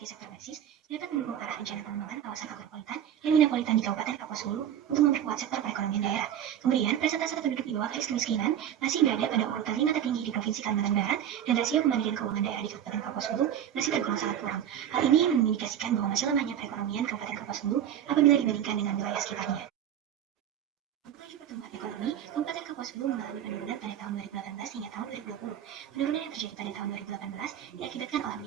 sektor basis dapat mendukung arah rencana pengembangan kawasan agropolitan dan metropolitan di Kabupaten Kapuas Hulu untuk memperkuat sektor perekonomian daerah. Kemudian, persentase penduduk di bawah garis kemiskinan masih berada pada urutan 5 tertinggi di Provinsi Kalimantan Barat dan rasio kemandirian keuangan daerah di Kabupaten Kapuas Hulu masih tergolong sangat kurang. Hal ini mengindikasikan bahwa masih lemahnya perekonomian Kabupaten Kapuas Hulu apabila dibandingkan dengan wilayah sekitarnya. Untuk laju pertumbuhan ekonomi, Kabupaten Kapuas Hulu mengalami penurunan pada tahun 2018 hingga tahun 2020. Penurunan yang terjadi pada tahun 2018 diakibatkan oleh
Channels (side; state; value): left; quieter; 10.1 dB